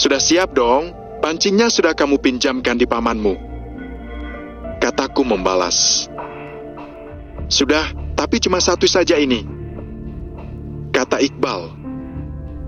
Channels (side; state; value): both; identical; correlation 1.00